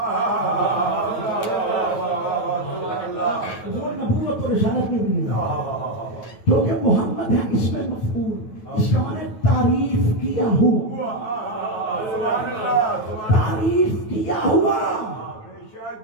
وہ نبوت و رسالت میں بھی نہیں ہے. کیونکہ محمد ہے اس میں مفعول. اس کا معنی تعریف کیا ہوا تعریف کیا ہوا.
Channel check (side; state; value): right; late; 9.2 ms